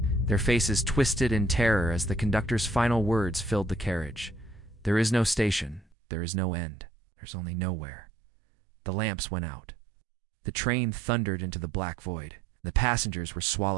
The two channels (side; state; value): left; drops out; at 5.9 s